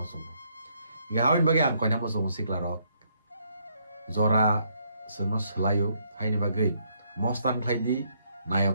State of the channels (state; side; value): inverted; both; correlation -0.72